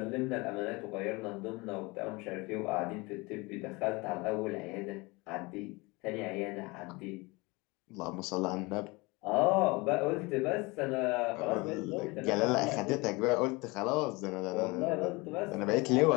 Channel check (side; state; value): right; quieter; 25.0 dB